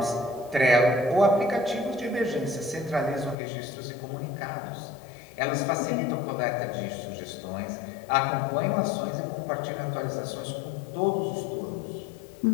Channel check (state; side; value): drops out; right; at 3.4 s